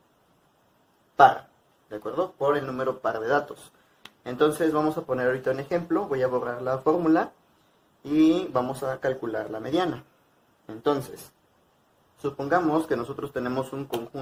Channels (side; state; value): both; identical; correlation 1.00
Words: par, ¿de acuerdo? Por el número par de datos. Entonces vamos a poner ahorita un ejemplo, voy a borrar la fórmula y vamos a calcular la mediana. Entonces, supongamos que nosotros tenemos un